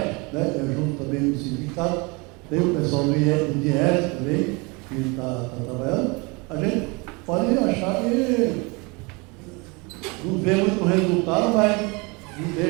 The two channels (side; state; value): left; quieter; 28.1 dB